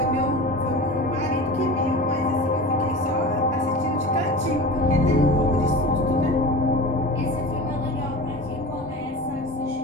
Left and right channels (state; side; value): normal; both; correlation 0.32